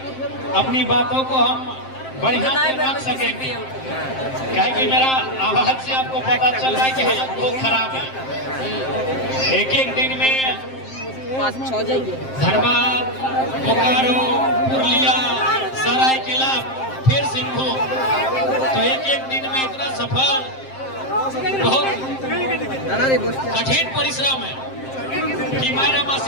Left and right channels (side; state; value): right; late; 7.6 ms